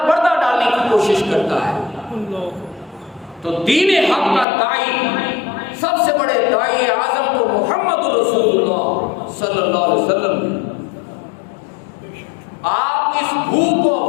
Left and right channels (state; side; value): drops out; right; at 4.5 s